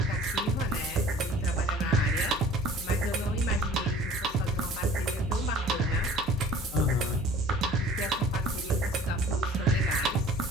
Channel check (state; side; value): normal; both; correlation 0.48